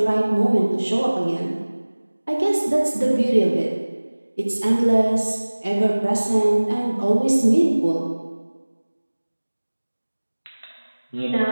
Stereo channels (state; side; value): inverted; both; correlation -1.00